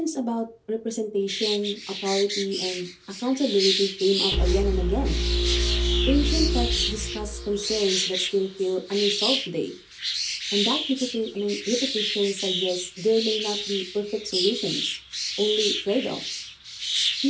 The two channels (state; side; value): identical; both; correlation 1.00